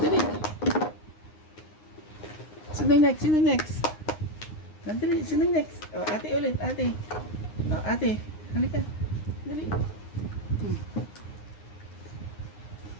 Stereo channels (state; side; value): late; right; 9.7 ms